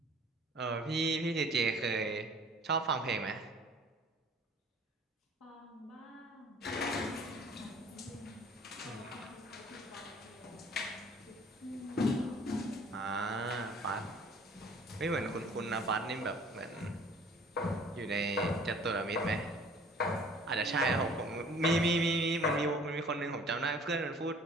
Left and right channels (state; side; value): normal; both; correlation 0.52